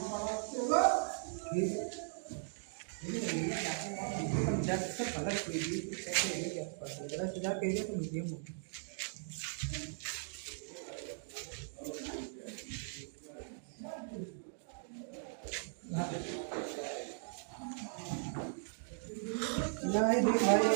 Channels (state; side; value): silent; left; digital silence